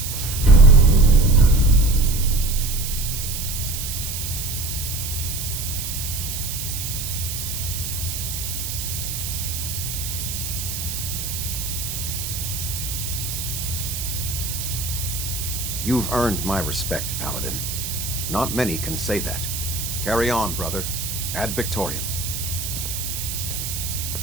You've earned my respect, Paladin. Not many can say that. Carry on, brother. Ad Victoriam.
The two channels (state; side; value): noise; right; hiss, 5 dB below the sound